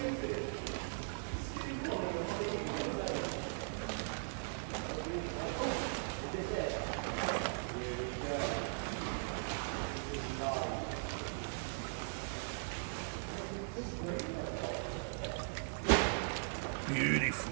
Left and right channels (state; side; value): silent; left; digital silence